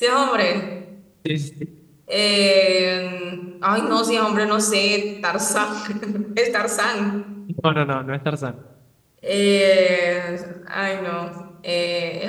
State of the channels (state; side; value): identical; both; correlation 1.00